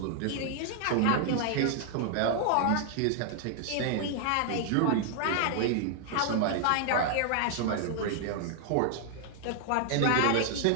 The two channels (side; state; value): both; different; correlation 0.00